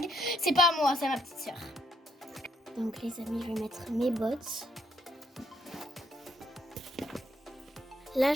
C'est pas à moi, c'est à ma petite sœur. Donc les amis, je vais mettre mes bottes. Là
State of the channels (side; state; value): both; normal; correlation 0.72